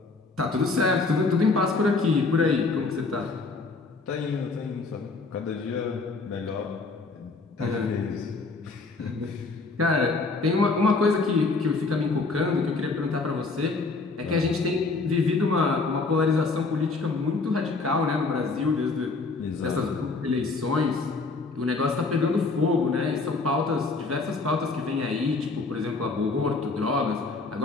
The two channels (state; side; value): quieter; right; 3.9 dB